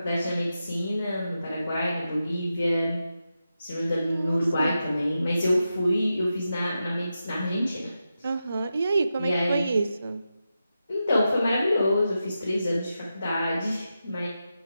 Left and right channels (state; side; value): inverted; both; correlation -0.89